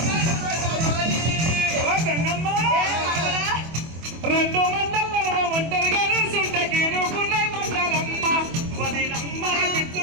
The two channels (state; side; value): late; left; 24 ms